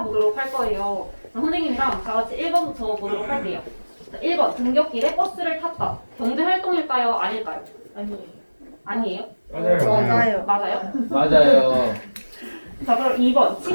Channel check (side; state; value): both; inverted; correlation -1.00